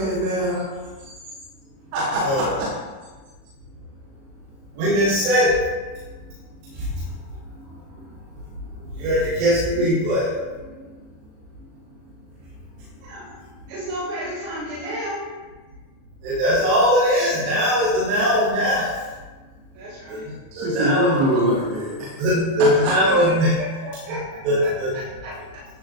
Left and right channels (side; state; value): left; late; 37 ms